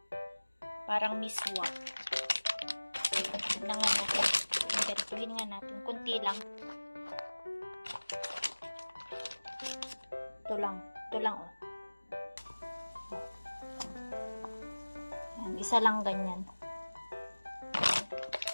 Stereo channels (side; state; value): both; inverted; correlation -1.00